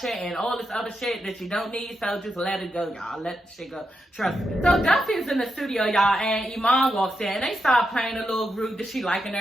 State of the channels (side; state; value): both; normal; correlation 0.85